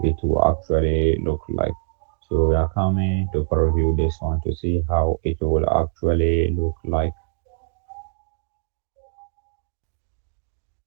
it will actually look like. So we are coming to preview this one to see how it will actually look like.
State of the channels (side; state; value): left; silent; digital silence